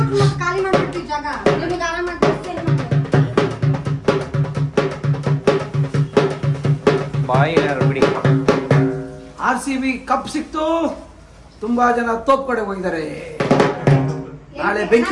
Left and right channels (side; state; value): both; identical; correlation 1.00